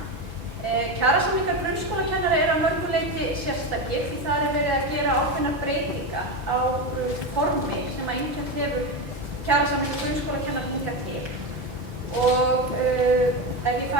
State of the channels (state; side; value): late; left; 5.5 ms